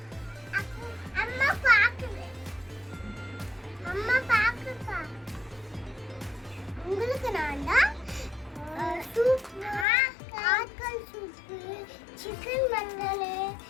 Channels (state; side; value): drops out; right; at 9.9 s